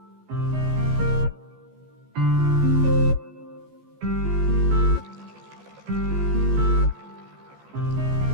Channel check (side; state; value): left; late; 14 ms